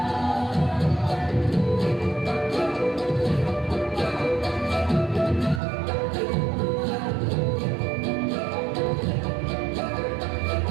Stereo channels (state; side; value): drops out; left; at 5.6 s